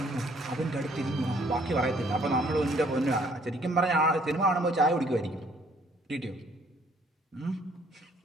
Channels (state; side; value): normal; both; correlation 0.62